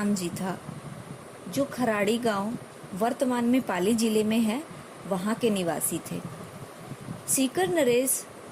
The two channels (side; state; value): both; identical; correlation 1.00